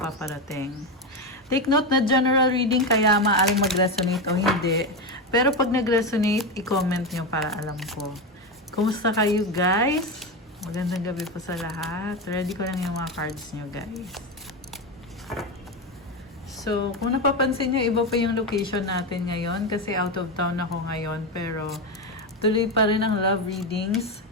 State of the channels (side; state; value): both; normal; correlation 0.14